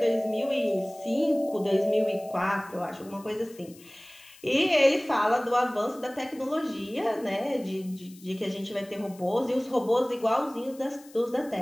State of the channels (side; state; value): left; noise; hiss, 23 dB below the sound